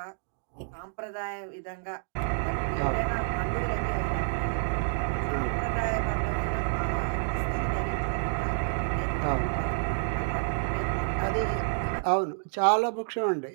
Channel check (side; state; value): left; silent; digital silence